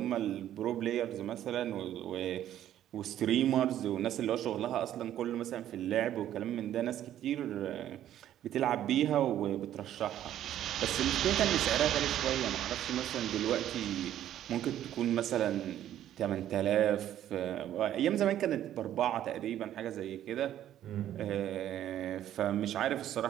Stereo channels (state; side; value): quieter; left; 11.7 dB